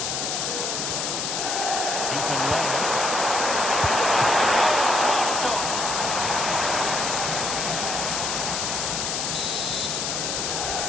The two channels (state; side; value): noise; left; hiss, 1 dB below the sound